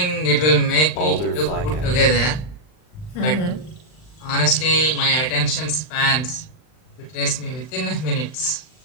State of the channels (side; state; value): right; late; 39 ms